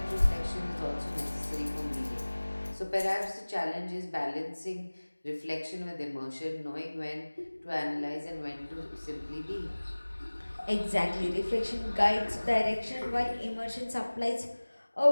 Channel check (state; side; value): inverted; both; correlation -1.00